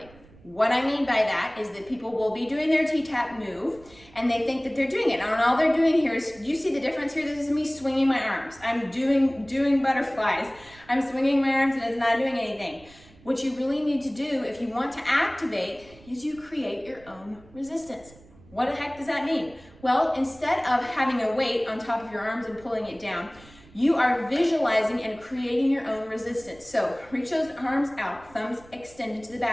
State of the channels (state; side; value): noise; right; rumble, 24 dB below the sound